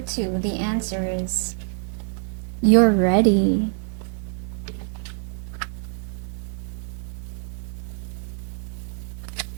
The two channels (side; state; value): left; silent; 62 dB below the other